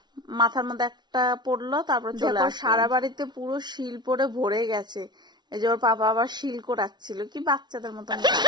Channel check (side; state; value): left; late; 0.20 ms